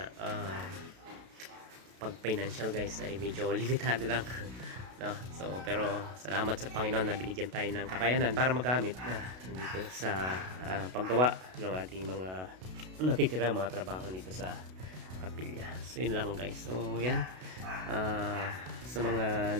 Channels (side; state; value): left; late; 32 ms